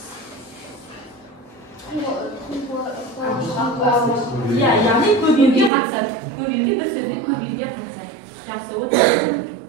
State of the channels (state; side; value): drops out; left; at 5.7 s